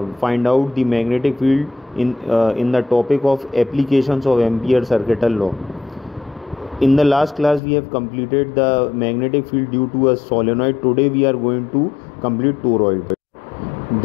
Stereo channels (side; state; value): right; drops out; at 7.6 s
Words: find out the magnetic field in the topic of applications of Ampere circuital law. In the last class, we have completed the magnetic field due to a solenoid. Today, we are going to complete toroid.